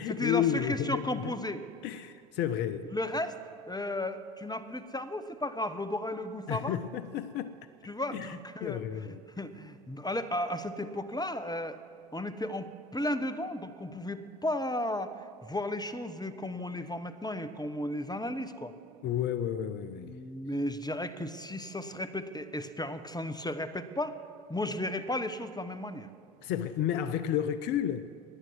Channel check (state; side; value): quieter; right; 3.5 dB